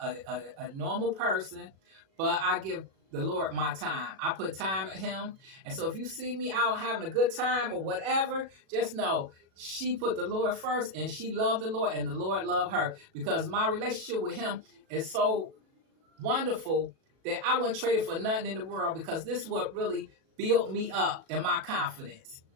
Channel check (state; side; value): late; left; 37 ms